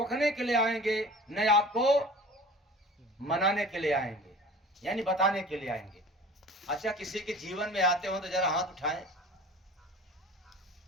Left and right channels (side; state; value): both; normal; correlation 0.41